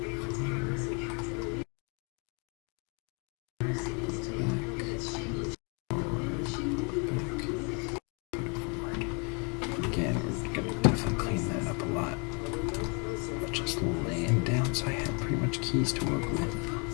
So I have pretty much keys to work with.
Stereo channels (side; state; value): right; quieter; 34.7 dB